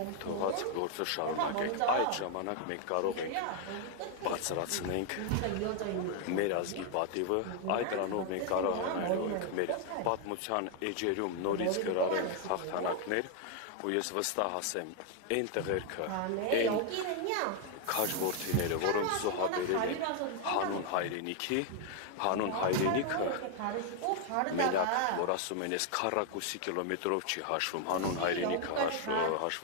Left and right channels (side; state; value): both; different; correlation 0.00